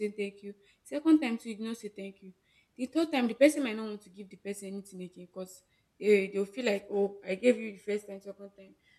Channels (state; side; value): identical; both; correlation 1.00